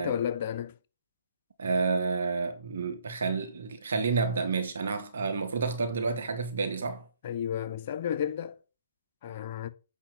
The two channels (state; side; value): inverted; both; correlation -0.64